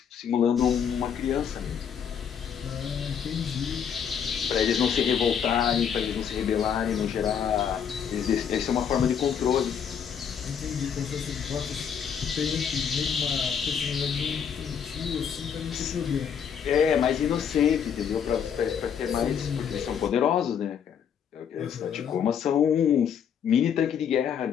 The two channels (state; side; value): quieter; right; 7.7 dB